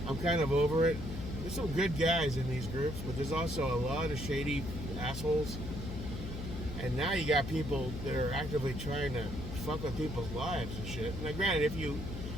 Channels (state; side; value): noise; left; hum, 7 dB below the sound